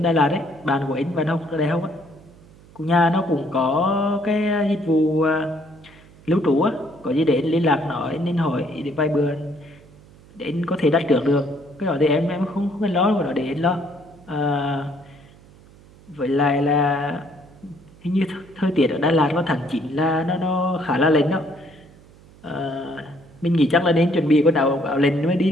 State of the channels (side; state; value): right; noise; hum, 24 dB below the sound